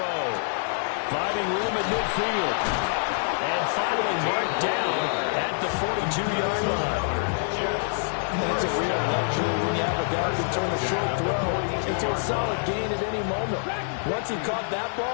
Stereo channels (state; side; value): silent; right; digital silence